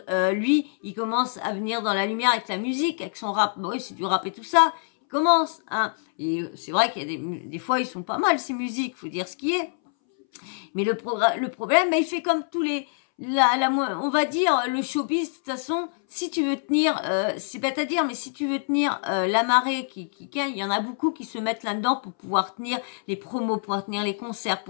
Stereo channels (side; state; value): right; silent; 62 dB below the other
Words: Lui, il commence à venir dans la lumière avec la musique, avec son rap. Bon, oui, c'est du rap et tout ça. Il commence. Hein. Et c'est vrai qu'il y a des fois, ils sont pas mal, ces musiques. Faut dire ce qui est. Mais le problème, il fait comme tous les... on va dire, le showbiz, de toute façon, si tu veux tenir, c'est bête à dire, mais si tu veux tenir la marée, il y en a beaucoup qui se mettent là-dedans pour pouvoir tenir les promos, pour pouvoir tenir les concerts, pour